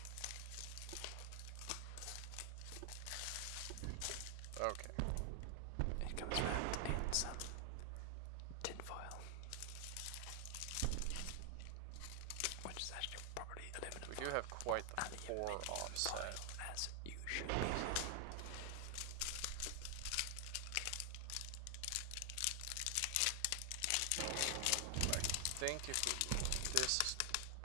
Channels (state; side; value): different; both; correlation 0.00